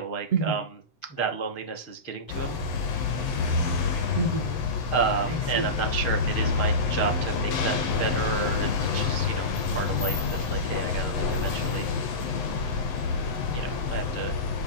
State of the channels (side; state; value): right; late; 7.9 ms